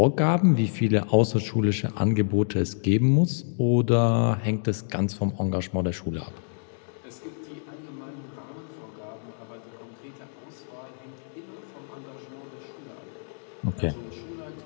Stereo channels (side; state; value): right; silent; digital silence